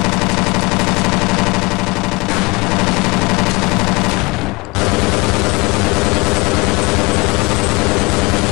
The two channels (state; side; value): quieter; right; 25.5 dB